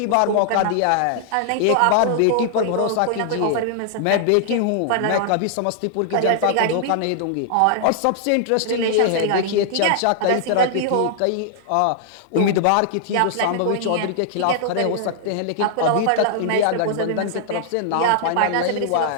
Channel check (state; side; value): different; both; correlation -0.01